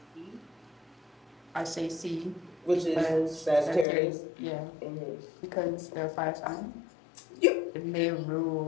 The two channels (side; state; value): right; drops out; at 3.9 s